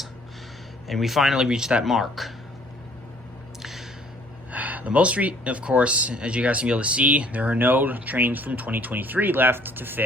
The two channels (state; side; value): normal; both; correlation 0.58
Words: and we finally reached that mark. The most of course, as you guys can be able to see, there are no trains from 2023 left to